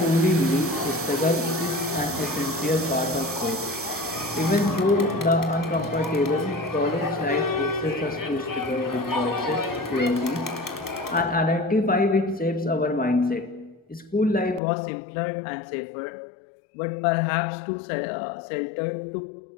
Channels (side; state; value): right; drops out; at 14.6 s